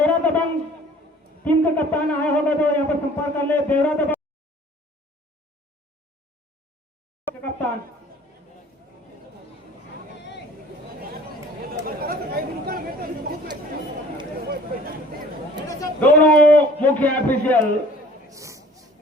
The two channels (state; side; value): normal; both; correlation 0.50